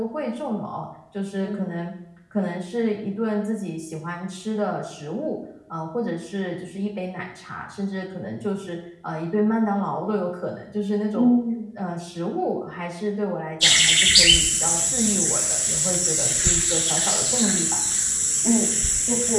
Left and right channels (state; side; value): identical; both; correlation 1.00